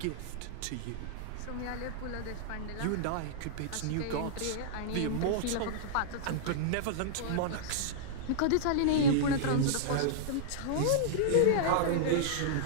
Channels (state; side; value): different; both; correlation -0.02